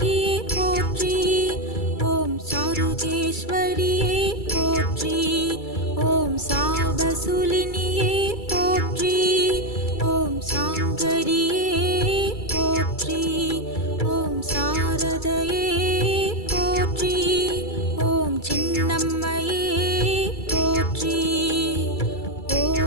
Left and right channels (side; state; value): right; late; 2.3 ms